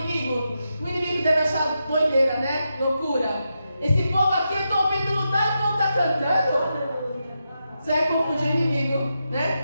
O inimigo deve achar doideira, né? Loucura. Esse povo aqui, eu estou ouvindo lutar e o povo está cantando. Você vai confundir o inimigo,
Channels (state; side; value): inverted; both; correlation -0.86